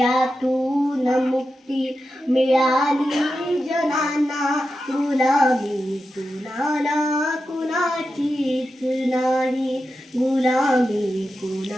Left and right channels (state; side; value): normal; both; correlation 0.90